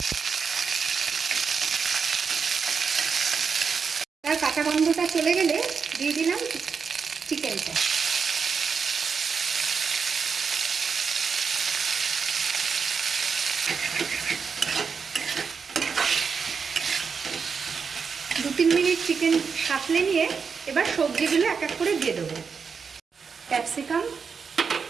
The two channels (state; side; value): quieter; left; 5.7 dB